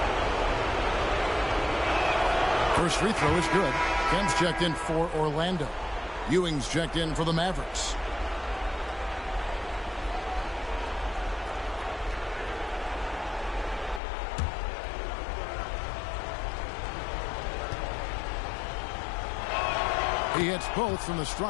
First free throw is good. Kemp's checked in for Orlando. Ewing's checked in for the Mavericks. He hits both from the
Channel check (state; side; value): drops out; right; at 14.0 s